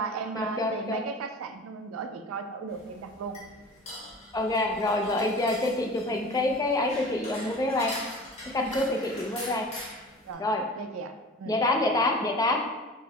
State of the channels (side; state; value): both; normal; correlation 0.38